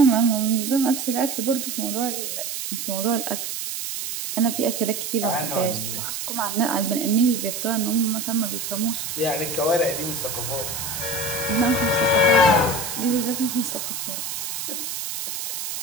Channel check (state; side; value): noise; right; hiss, 5 dB below the sound